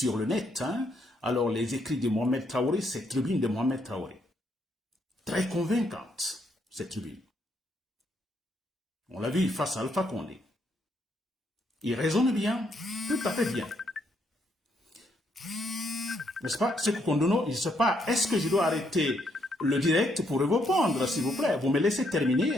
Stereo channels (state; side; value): normal; both; correlation 0.74